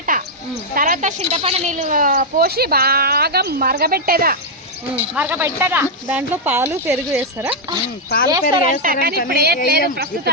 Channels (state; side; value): normal; both; correlation -0.03